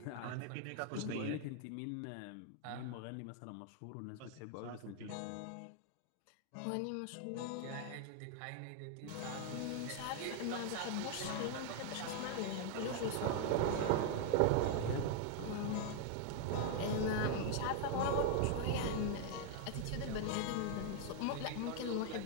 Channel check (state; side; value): different; both; correlation 0.00